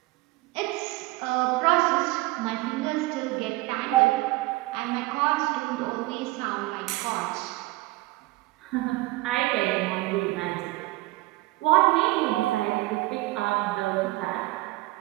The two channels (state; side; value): quieter; left; 20.4 dB